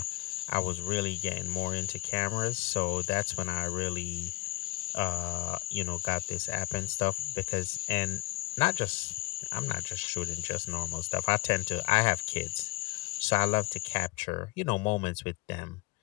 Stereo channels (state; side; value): quieter; right; 22.1 dB